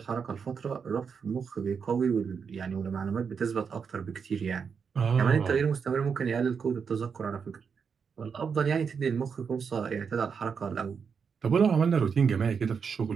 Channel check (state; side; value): quieter; left; 6.2 dB